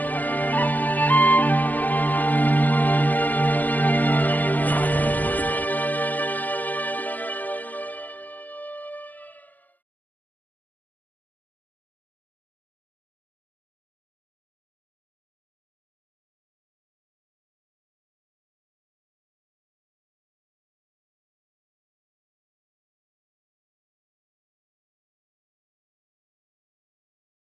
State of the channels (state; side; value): late; right; 0.084 ms